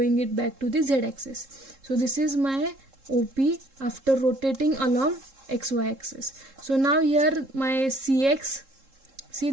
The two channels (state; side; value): late; left; 3.7 ms